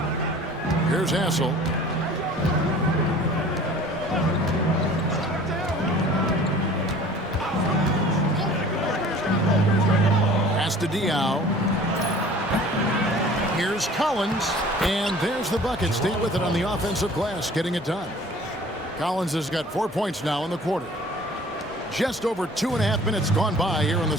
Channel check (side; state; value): both; normal; correlation 0.48